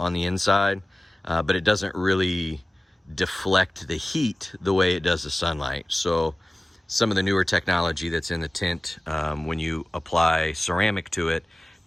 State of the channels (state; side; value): normal; both; correlation 0.97